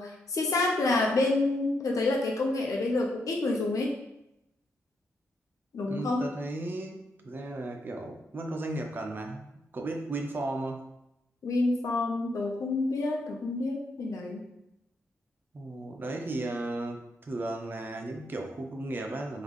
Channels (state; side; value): normal; both; correlation 0.78